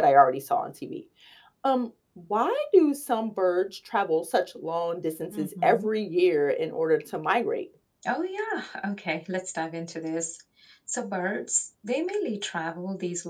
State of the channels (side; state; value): both; identical; correlation 1.00